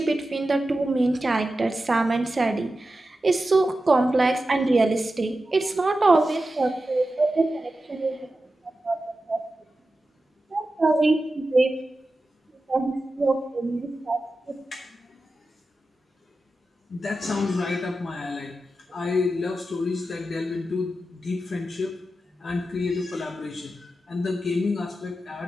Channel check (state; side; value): normal; both; correlation 0.92